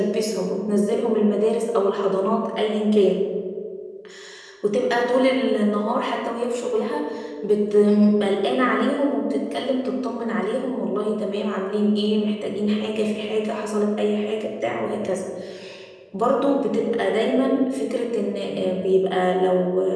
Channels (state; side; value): identical; both; correlation 1.00